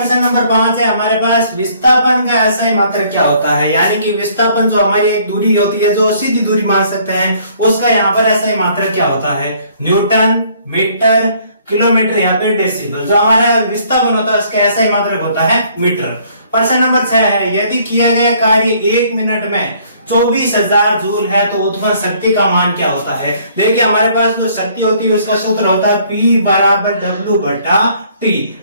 नंबर 5 है हमारे पास, विस्थापन का एसआई मात्रक क्या होता है, यानी कि विस्थापन जो हमारी एक दूरी होती है जो सीधी दूरी मान सकते हैं उसका यहाँ पर एसआई मात्रक क्या होता है। न्यूटन, मीटर, किलोमीटर, या फिर डेसिबल। जो हमारा विस्थापन होता है उसका एसआई मात्रक होता है मीटर। प्रश्न नंबर 6 है, यदि किया गया कार्य 1 मिनट में 24,000 जूल है तो उत्पन्न शक्ति का मान क्या होता है। देखिए हमारे पास जो शक्ति होती है उसका सूत्र होता है P बराबर W बटा T।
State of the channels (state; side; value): inverted; both; correlation -0.61